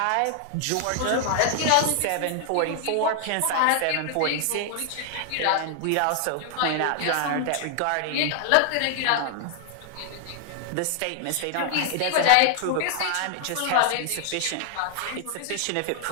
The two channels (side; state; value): both; different; correlation 0.00